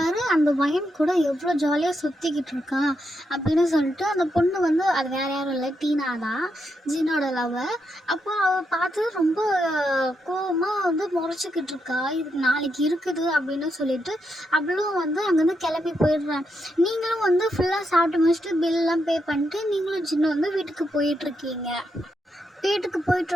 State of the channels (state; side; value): normal; both; correlation 0.82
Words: அந்த வயன் கூட எவ்வளோ ஜாலியாக சுற்றிக்கிட்டு இருக்கான் அப்படின்னு சொல்லிட்டு அந்த பொண்ணு வந்து அது வேறு யாரும் இல்லை, டீனா தான், ஜின்னோட லவ்வர். அப்போ அவள் பார்த்து ரொம்ப கோவமாக வந்து முறைச்சிக்கிட்டு இருக்கா. இது நாளைக்கு இருக்குது அப்படின்னு சொல்லிட்டு அவளும் வந்து அங்கேருந்து கிளம்பி போயிடுறான். நீங்களும் வந்து ஃபுல்லாக சாப்பிட்டு முடிச்சுட்டு பில்லாம் பே பண்ணிட்டு நீங்களும் ஜின்னு வந்து வீட்டுக்கு போயிட்டுருக்கீங்க. வீட்டுக்கு